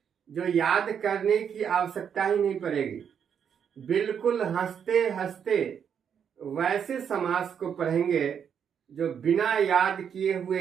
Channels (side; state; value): left; quieter; 7.8 dB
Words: जो याद करने की आवश्यकता ही नहीं पड़ेगी। बिल्कुल हंसते हंसते वैसे समास को पढ़ेंगे जो बिना याद किए